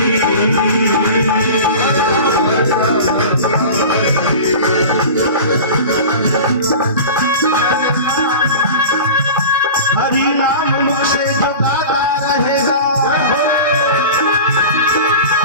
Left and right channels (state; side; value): inverted; both; correlation -0.35